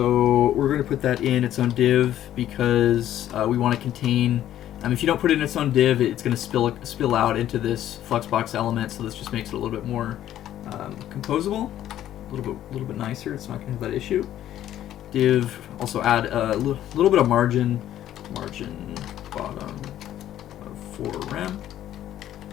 we're going to put that in its own div because we want to contain. If you don't put it in its own div, it's going to spill out into this Fluxbox element. So this just makes it a little bit more composable, a little bit nicer. It's not going to have that issue. Div, also add a little bit of margin bottom of 4 rem.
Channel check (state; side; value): quieter; right; 12.1 dB